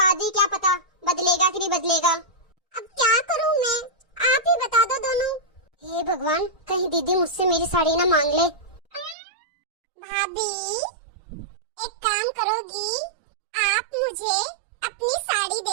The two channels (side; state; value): left; drops out; at 9.2 s